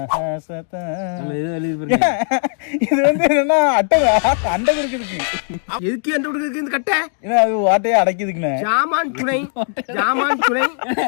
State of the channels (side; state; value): right; silent; digital silence